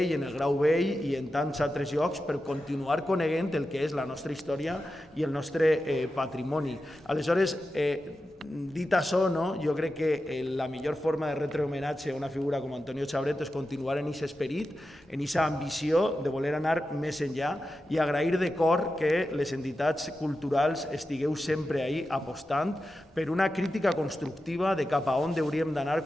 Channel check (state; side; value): normal; both; correlation 0.91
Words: en el Grau Vell i en tants altres llocs per continuar coneguent el que és la nostra història i el nostre patrimoni. Aleshores, dit això, jo crec que la millor forma de retre homenatge a una figura com Antonio Xabret és continuar en aquest esperit, en aquesta ambició de voler anar més enllà i agrair de cor que les entitats culturals estigueu sempre ahí apostant per una crítica constructiva de cap a on hauríem d'anar